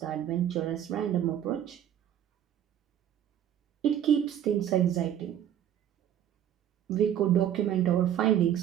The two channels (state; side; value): quieter; left; 10.4 dB